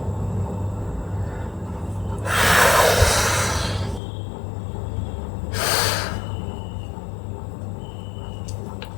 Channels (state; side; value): drops out; right; at 4.0 s